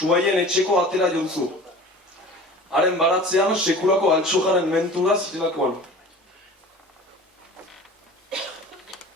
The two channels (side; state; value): both; normal; correlation 0.41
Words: etxeko atera jontzu. Haren baratzean, sekulako altxojaren mentura zirelakoan.